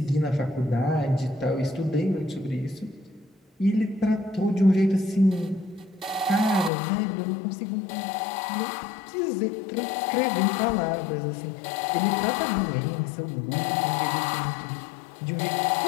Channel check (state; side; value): drops out; right; at 6.7 s